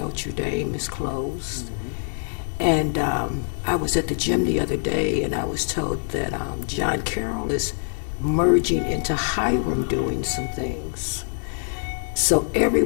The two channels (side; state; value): right; silent; digital silence